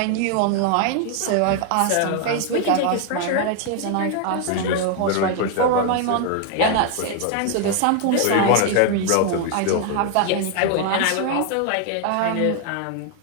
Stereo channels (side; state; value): both; different; correlation 0.00